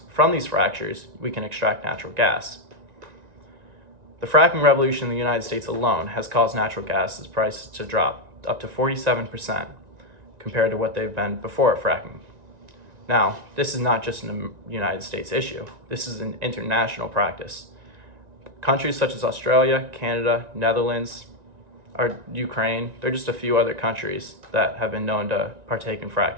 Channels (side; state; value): left; late; 1.9 ms